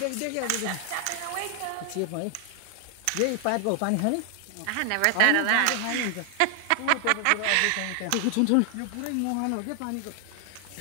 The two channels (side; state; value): both; different; correlation 0.00